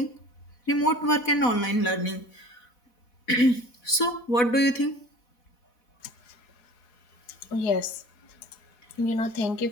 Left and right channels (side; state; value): right; late; 4.1 ms